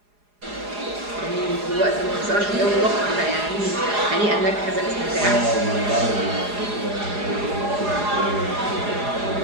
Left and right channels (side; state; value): left; late; 4.9 ms